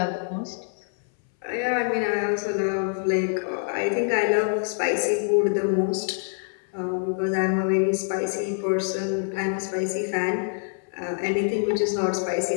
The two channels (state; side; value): silent; right; 61 dB below the other